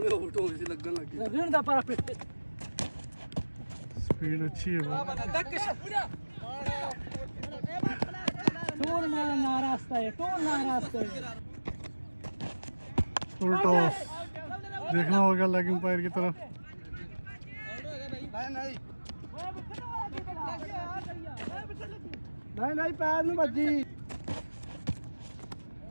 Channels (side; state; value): both; inverted; correlation -1.00